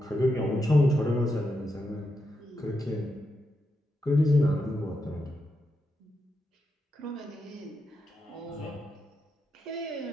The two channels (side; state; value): both; normal; correlation 0.85